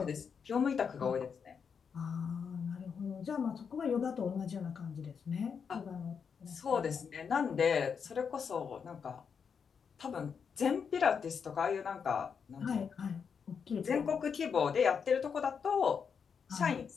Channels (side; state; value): right; quieter; 6.5 dB